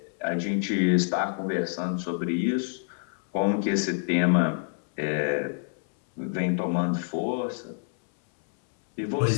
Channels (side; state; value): right; silent; 60 dB below the other